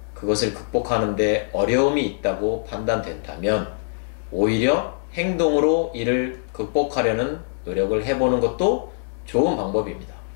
그것을 극복하는 데 어려움이 있다고 판단된다면 오히려 행동으로 이를 극복하려는 노력을 해보는 것도 좋은 방법입니다.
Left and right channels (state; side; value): silent; right; digital silence